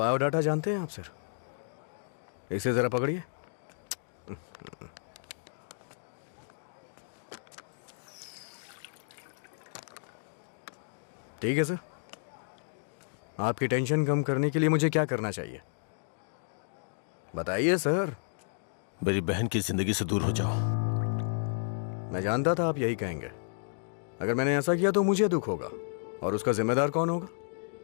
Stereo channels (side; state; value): right; silent; digital silence